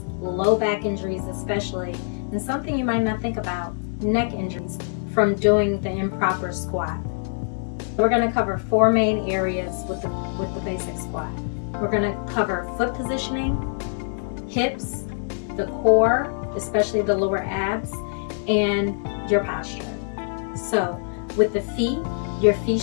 low back injuries especially, and something you might not think about, neck injuries from doing the improper squat. We're going to cover four main areas with the basic squat. We're going to cover foot positioning, hips, the core, especially the lower abs, and your posture. So with the feet, your feet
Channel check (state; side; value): silent; right; digital silence